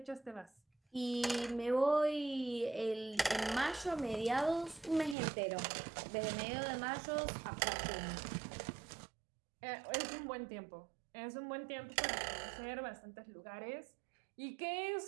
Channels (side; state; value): left; drops out; at 5.2 s